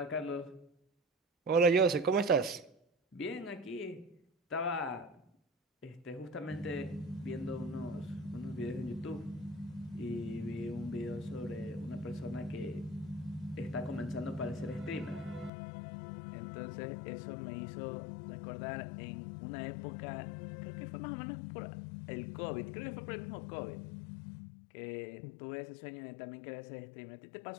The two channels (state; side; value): drops out; right; at 15.5 s